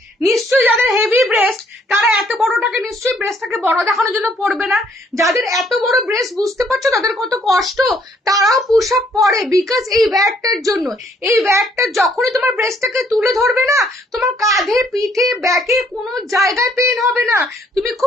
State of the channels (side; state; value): both; normal; correlation 0.66